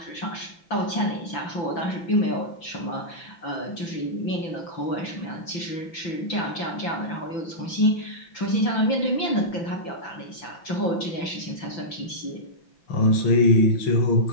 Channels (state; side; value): late; right; 5.9 ms